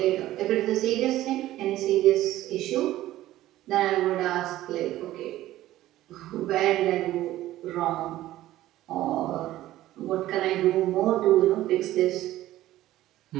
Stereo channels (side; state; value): left; quieter; 14.8 dB